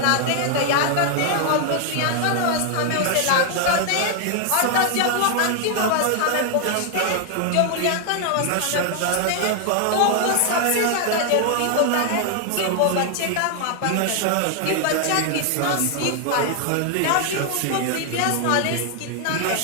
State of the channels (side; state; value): both; different; correlation 0.00